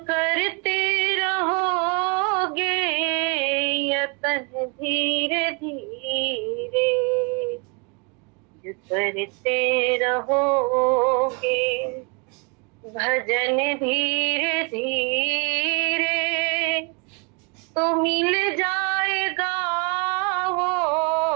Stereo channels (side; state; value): left; quieter; 32.6 dB